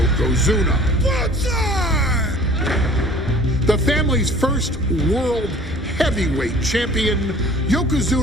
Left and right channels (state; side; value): normal; both; correlation 0.49